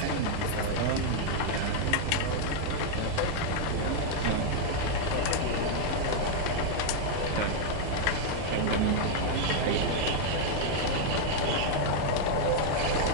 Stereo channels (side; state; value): both; different; correlation 0.00